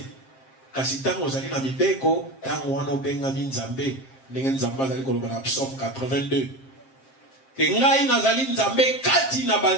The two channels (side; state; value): right; late; 7.5 ms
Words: Kasi tango ozali na mibeko tango wana obenga nzambe ndenge nzambe azali koloba na Psaume 82. Ke ngai nazali nzambe kati na